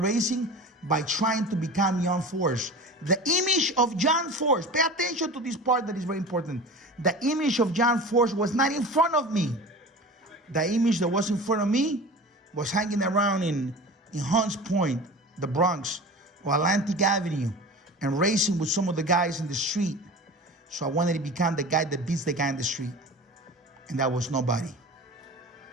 by trying to become John Force. The image of John Force, pay attention to this part that is very important. The image of John Force was not in front of me. The image that was in front of me was hanging around in Hunts Point, the Bronx, or Atlantic Avenue, and racing with some of the guys in the street. So I wanted to become the guy that beats the guy in the street. And that was nobody.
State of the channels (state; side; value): normal; both; correlation 0.35